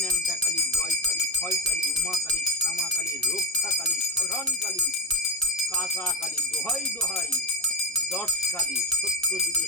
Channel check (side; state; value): both; normal; correlation 0.15